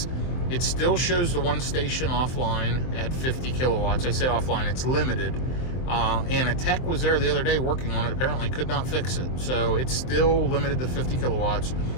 It still shows the one station offline at 50 kilowatts. I say offline, it's limited. And a tech was there the other day working on it, apparently could not fix it. So it's still limited to 50 kilowatts.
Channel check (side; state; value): right; late; 23 ms